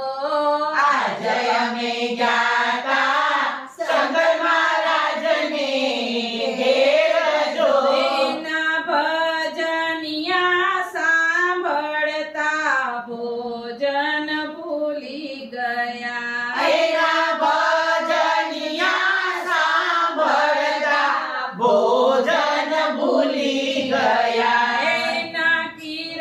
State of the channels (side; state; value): both; identical; correlation 1.00